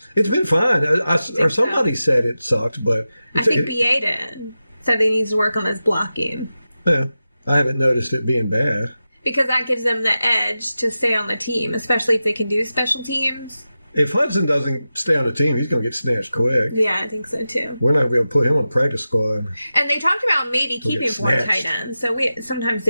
It's been fine. Or somebody said it sucked, but I think BA did. Said he needs to work on his blocking. Yeah, I haven't noticed it being bad. Because that gives them the edge to stay on the team, especially if they can do special teams. If Hudson doesn't stay on the team, he's going to get snatched quick. Yeah, I think so too. We're not going to be able to put him on the practice squad. And they talked about maybe keeping 4 tight ends, so sometimes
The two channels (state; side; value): inverted; both; correlation -0.93